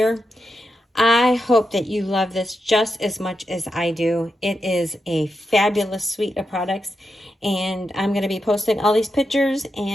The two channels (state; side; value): normal; both; correlation 0.86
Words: I hope that you love this just as much as I do. It is a fabulous suite of products, and I'm going to be posting all these pictures